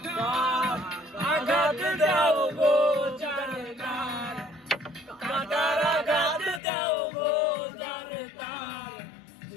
আঘাত দাও গো জানতার কাটার আঘাত দাও গো জানতার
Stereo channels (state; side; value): drops out; right; at 6.6 s